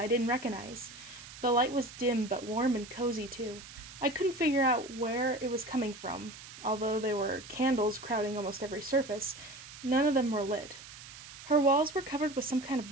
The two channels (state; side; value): noise; right; hiss, 15 dB below the sound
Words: didn't recognize. The light was dim but warm and cozy too. I couldn't figure out where it was coming from, although there were candles crowding almost every surface. None of them were lit. Her walls were covered with some kind of